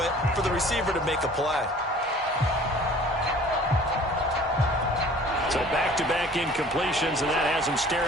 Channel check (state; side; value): normal; both; correlation 0.49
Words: it for the receiver to make a play. So back-to-back incompletions, and that has him